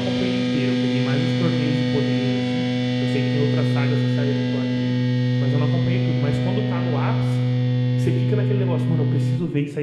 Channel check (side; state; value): both; identical; correlation 1.00